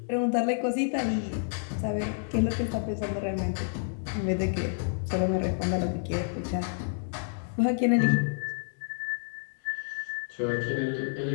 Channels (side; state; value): right; silent; digital silence